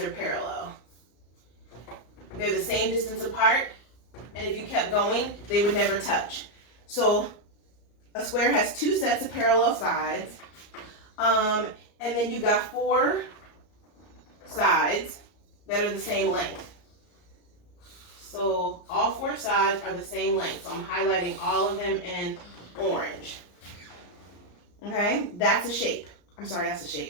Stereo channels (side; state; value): right; late; 34 ms